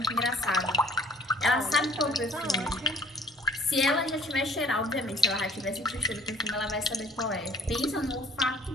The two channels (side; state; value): both; normal; correlation 0.55